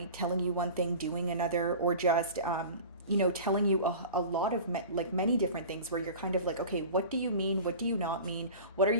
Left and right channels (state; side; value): inverted; both; correlation -0.37